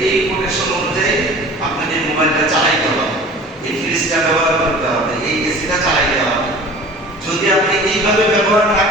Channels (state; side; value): normal; both; correlation 0.43